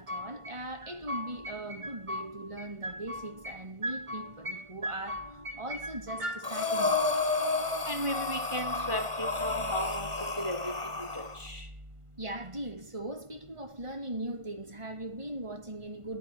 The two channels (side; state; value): left; late; 1.5 ms